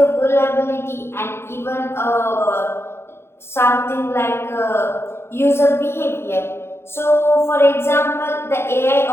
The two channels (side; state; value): right; late; 0.12 ms